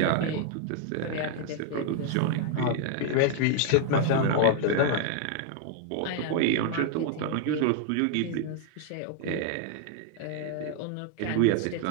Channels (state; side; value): different; both; correlation 0.00